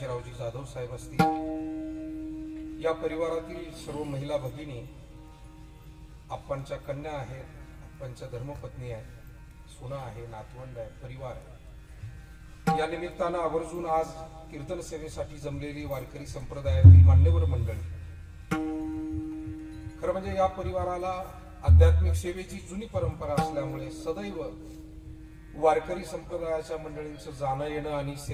जाधव साहेब असतील, या परिवारातील सर्व महिला भगिनी, आप्पांच्या कन्या आहेत, आप्पांच्या धर्मपत्नी आहेत, सुना आहे, नातवंड आहे, परिवार आहे. या निमित्तानं आवर्जून आज कीर्तन सेवेसाठी जमलेली वारकरी संप्रदायातील मान्यवर मंडळी, खरं म्हणजे या परिवाराला आध्यात्मिक सेवेची जुनी परंपरा असल्यामुळे सदैव वारकरी संप्रदायाच्या मंडळींचं जाणं येणं आणि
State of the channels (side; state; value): both; identical; correlation 1.00